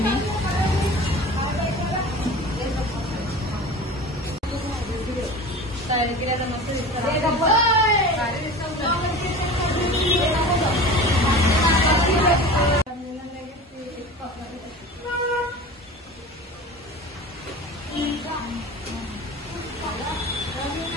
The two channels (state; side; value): normal; both; correlation 0.36